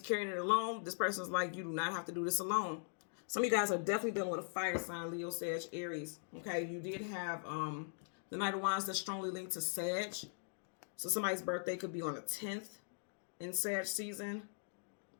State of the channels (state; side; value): silent; right; digital silence